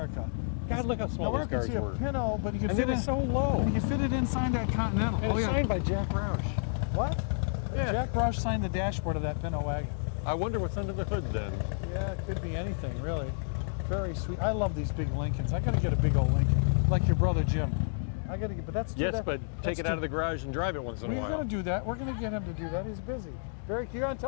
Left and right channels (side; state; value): right; silent; digital silence